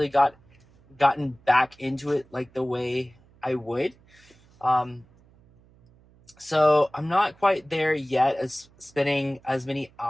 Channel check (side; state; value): right; noise; hum, 29 dB below the sound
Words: gotten back into it like the way I would. Um, so I'm not quite there yet as spending as many